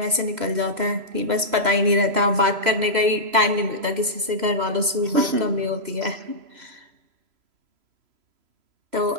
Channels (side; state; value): left; late; 3.0 ms